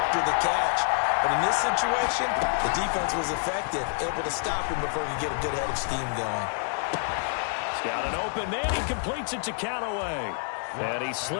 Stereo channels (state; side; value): silent; right; 60 dB below the other